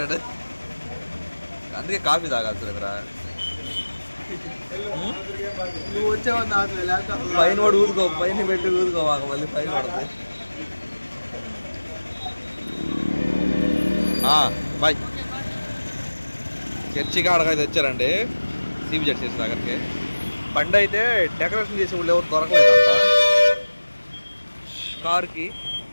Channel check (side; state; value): both; inverted; correlation -1.00